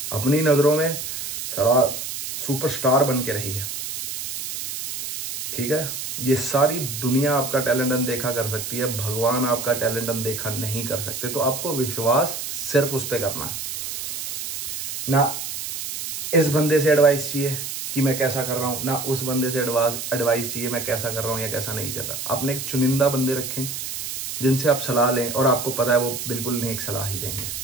अपनी नजरों में सारा सुपरस्टार बन के रही है, ठीक है। ये सारी दुनिया आपका टैलेंट अनदेखा कर सकती है, भगवान आपका टैलेंट अनदेखा नहीं कर सकते। तो आपको विश्वास सिर्फ उस पर करना है। ना इस बंदे से एडवाइस चाहिए कि मैं कैसा कर रहा हूं, ना उस बंदे से एडवाइस चाहिए मैं कैसा कर रहा हूं या कैसा नहीं चल रहा। आपने एक चुनिंदा बंदे रखें जिनसे आप सलाह लें और आपको पता है वो बिल्कुल नेक सलाह ही देंगे।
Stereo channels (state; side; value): noise; right; hiss, 6 dB below the sound